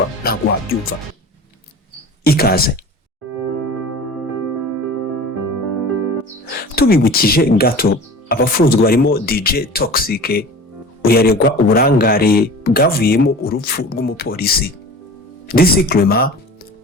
ntabwo wabyumva. Ikaze. Tubibukije gato, abafunzwe barimo DJ Toxic uyaregwa uburangare bwavuyemo urupfu rw'umupolisi. DC Clement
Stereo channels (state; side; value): normal; both; correlation 0.38